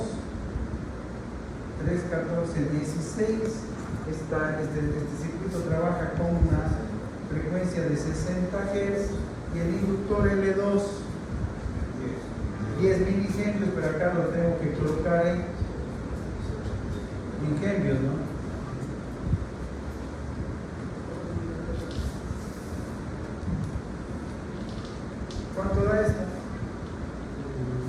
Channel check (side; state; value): both; identical; correlation 1.00